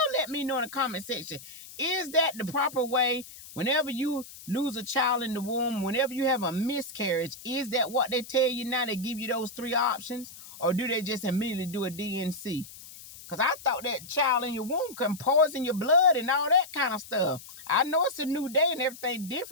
let me know in the comment section. Is that the proper way? Whenever you lose a child in the womb, whenever you have a miscarriage, is that what they tell you now? They give you those 3 options? Or do they just immediately do a DNC? Because I thought that child in your womb can poison your blood and all that kind of stuff. I know it's a new day and everything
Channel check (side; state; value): left; noise; hiss, 16 dB below the sound